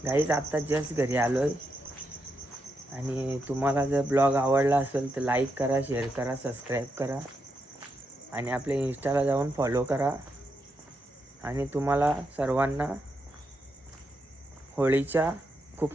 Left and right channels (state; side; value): normal; both; correlation 0.83